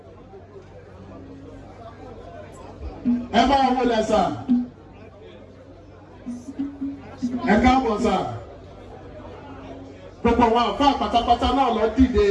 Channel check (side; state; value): both; identical; correlation 1.00